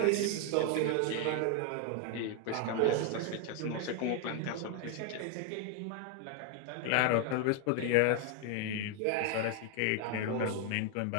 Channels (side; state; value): both; different; correlation 0.01